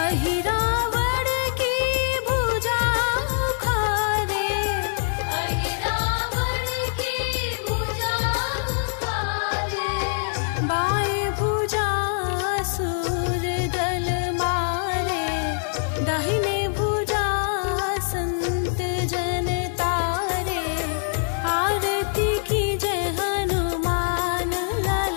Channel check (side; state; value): right; silent; 63 dB below the other